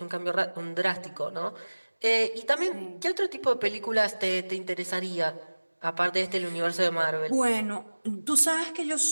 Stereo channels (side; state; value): both; inverted; correlation -1.00